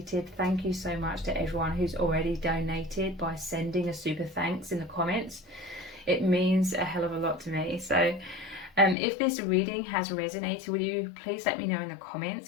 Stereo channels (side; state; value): right; drops out; at 9.0 s